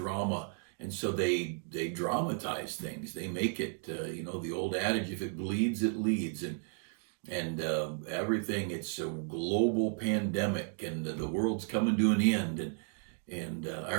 And so they dramatize things. They make it, the old adage, if it bleeds, it leads. And everything, it's a global pandemic and the world's coming to an end. And I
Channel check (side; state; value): left; silent; 55 dB below the other